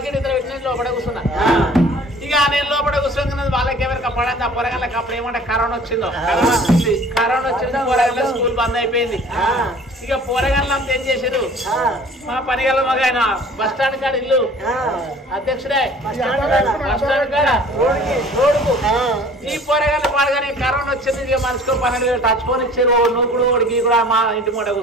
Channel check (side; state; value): both; normal; correlation 0.49